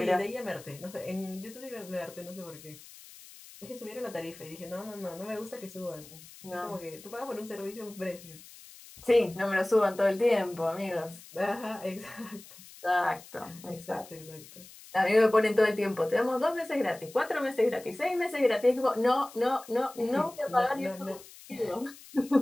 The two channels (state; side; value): noise; left; hiss, 19 dB below the sound